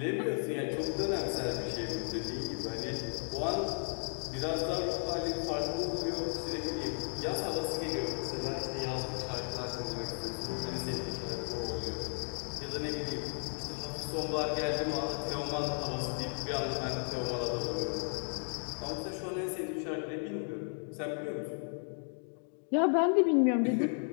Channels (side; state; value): right; silent; 55 dB below the other